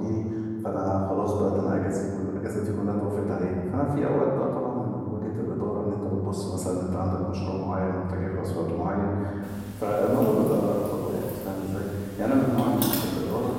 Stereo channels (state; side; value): identical; both; correlation 1.00